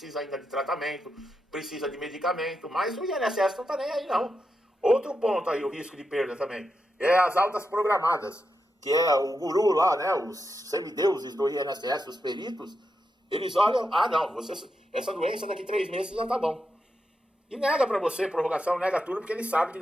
ainda de tratamento, precisa de medicamento, mas o INSS não está nem aí, não. Outro ponto aí, o risco de perda também, é as altas programadas, que é o guru lá, né, os semideuses do INSS, os peritos, eles olham, não, essa doença daqui 3 meses já tá bom. E nega pra você prorrogação, nega tudo, porque ele sabe que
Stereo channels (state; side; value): normal; both; correlation 0.86